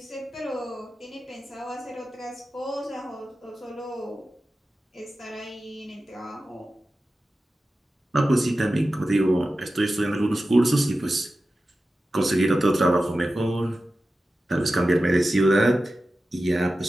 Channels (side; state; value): both; normal; correlation 0.93